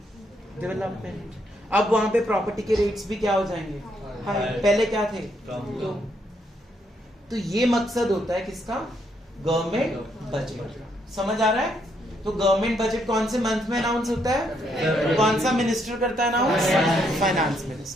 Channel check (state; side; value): normal; both; correlation 0.74